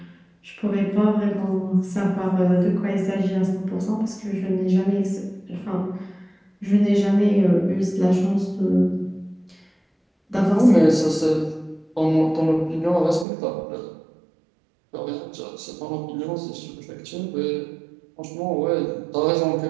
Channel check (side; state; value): left; drops out; at 13.2 s